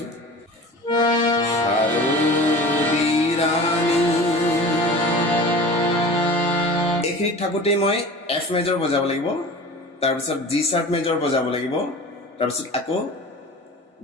শাৰদী ৰাণী এইখিনিত থাকোঁতেই মই এফ মেজৰ বজাব লাগিব তাৰপিছত জি শাৰ্প মেজৰ বজাব লাগিব তাৰপিছত আকৌ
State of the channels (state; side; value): normal; both; correlation 0.37